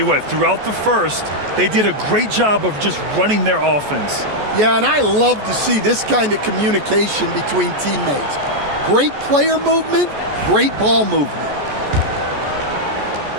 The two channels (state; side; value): late; left; 14 ms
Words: what, throughout the first, they did a great job of just running their offense. Yeah, and I love to see this kind of communication between teammates. Great player movement, great ball movement.